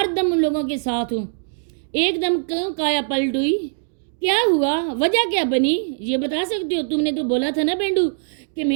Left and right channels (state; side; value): silent; left; digital silence